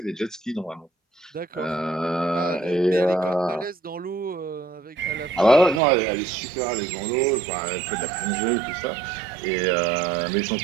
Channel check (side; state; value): left; drops out; at 5.8 s